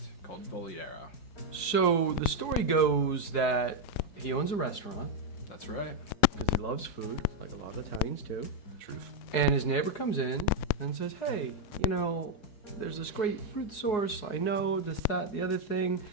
called Voliero. So, the story goes that he owns a restaurant. That's right. Because he loves food, like a lot of Italians do. Truth. And his neighbor comes in and says, hey, there's this great fruit source. I know this, that, the other thing.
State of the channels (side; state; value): right; late; 4.6 ms